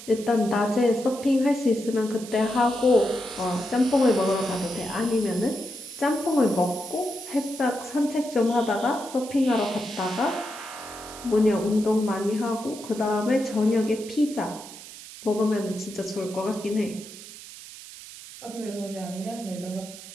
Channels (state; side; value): noise; right; hiss, 15 dB below the sound